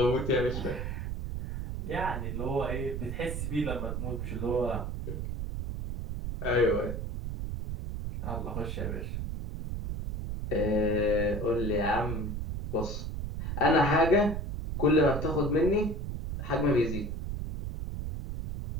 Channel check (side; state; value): right; noise; rumble, 4 dB below the sound